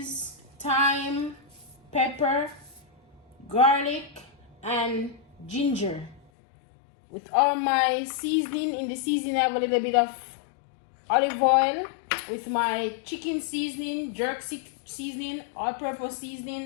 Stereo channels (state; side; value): drops out; right; at 6.2 s